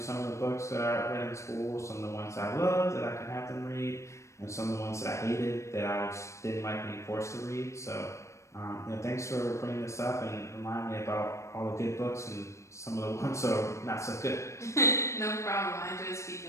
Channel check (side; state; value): right; late; 0.14 ms